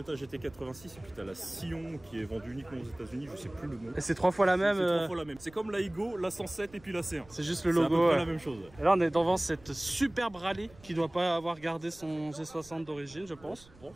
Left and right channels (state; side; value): noise; right; rumble, 24 dB below the sound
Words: GT86 et puis t'as la Scion qui est vendue uniquement aux États-Unis, je sais plus le nom. Et c'est 3 fois la même. C'est 3 fois la même. C'est comme la Igo, la 107 et puis la C1. C'est juste le logo. C'est la même chose. Et là on est devant cette superbe rallye qui doit pas avoir gardé son G60 d'origine je pense. Je pense